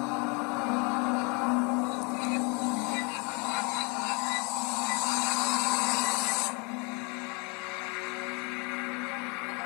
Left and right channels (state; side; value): quieter; right; 30.5 dB